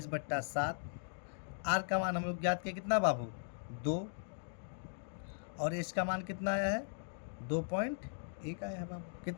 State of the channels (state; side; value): silent; right; digital silence